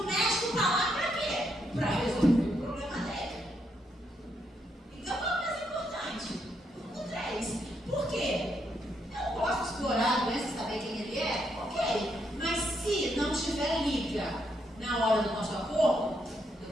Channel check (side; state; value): both; normal; correlation 0.77